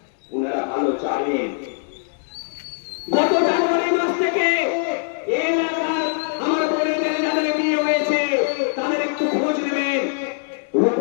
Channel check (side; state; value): right; silent; 64 dB below the other